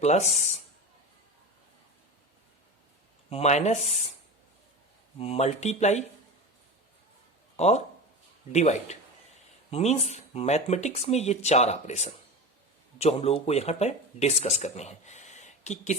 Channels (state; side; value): normal; both; correlation 0.27